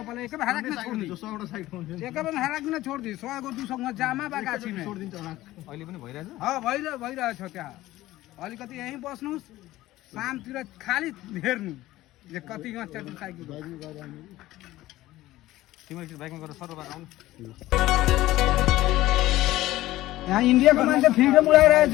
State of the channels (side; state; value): right; quieter; 16.3 dB